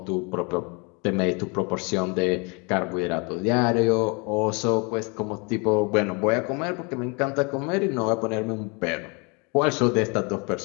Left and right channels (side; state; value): right; quieter; 31.1 dB